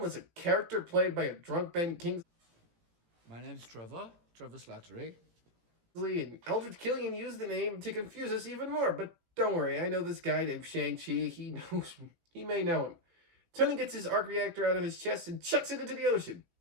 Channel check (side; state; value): left; late; 17 ms